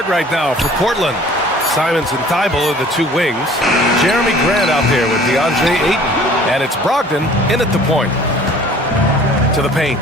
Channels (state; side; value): normal; both; correlation 0.51